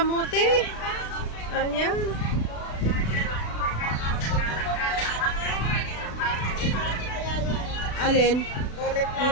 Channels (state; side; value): late; right; 36 ms